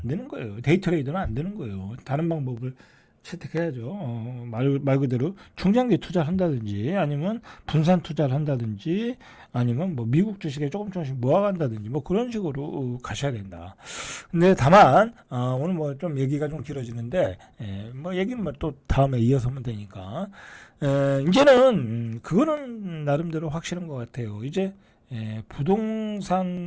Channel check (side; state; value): both; identical; correlation 1.00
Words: 되는 거예요. 데이 트레이드는 안 되는 거예요. 다른 방법을 채택해야죠. 말 그대로 중장기 투자를 한다든지 아니면 분산 투자를 한다든지 아니면 뭐 미국 주식에 조금씩 모아간다든지 뭐 그런 식으로 가셔야 된다. 근데 다만 오늘 뭐 좀 얘기가 좀 길어지는데 뭐 얘기는 뭐 또 다음에 이어서 하면 되니까 이제는 그거는 나름대로 확실한 것 같아요. 이제